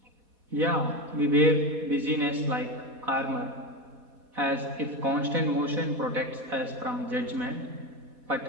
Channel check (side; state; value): left; late; 4.1 ms